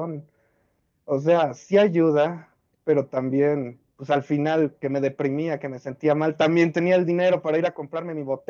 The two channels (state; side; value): identical; both; correlation 1.00